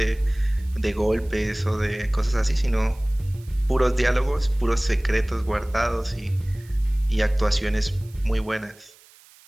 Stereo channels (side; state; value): right; noise; hiss, 26 dB below the sound